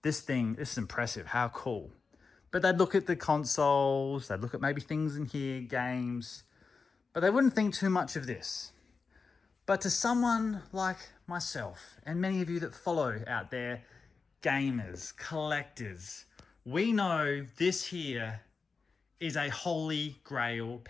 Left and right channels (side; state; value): right; quieter; 4.7 dB